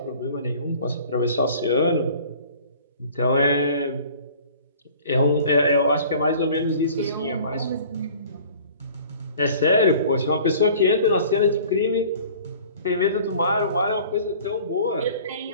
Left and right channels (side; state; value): both; inverted; correlation -0.48